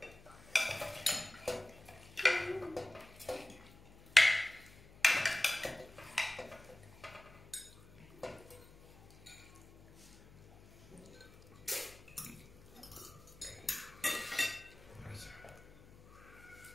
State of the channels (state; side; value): noise; left; hum, 22 dB below the sound